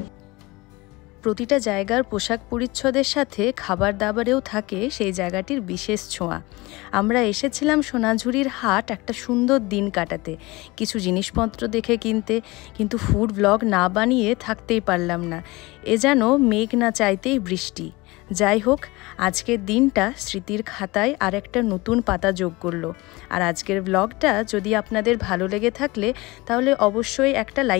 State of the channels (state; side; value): quieter; right; 22.3 dB